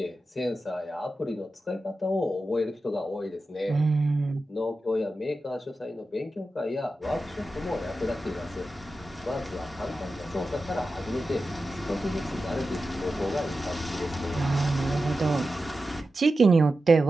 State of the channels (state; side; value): normal; both; correlation 0.92